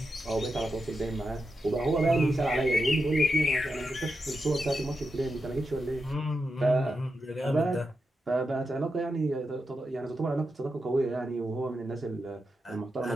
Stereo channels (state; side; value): normal; both; correlation 0.87